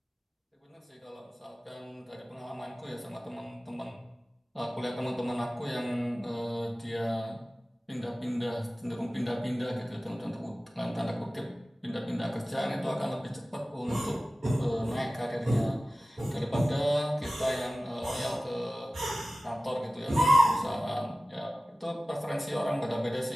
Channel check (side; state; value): both; normal; correlation 0.96